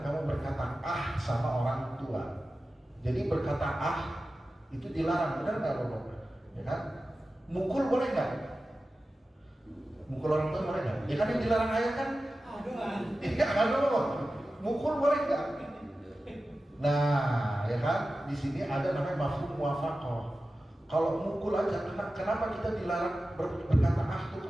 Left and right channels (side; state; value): both; normal; correlation 0.94